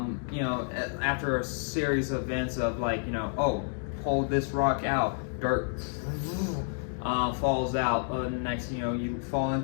a series of events of pull this rock out, dirt falls out, and next you fall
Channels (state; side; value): silent; right; 58 dB below the other